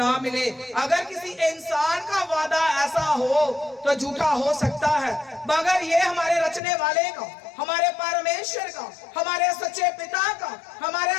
मिले। अगर किसी इंसान का वादा ऐसा हो तो झूठा हो सकता है, मगर ये हमारे रचने वाले का, हमारे परमेश्वर का, हमारे सच्चे पिता का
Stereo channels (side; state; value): right; drops out; at 6.6 s